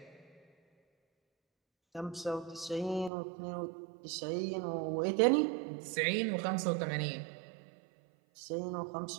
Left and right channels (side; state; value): left; drops out; at 3.1 s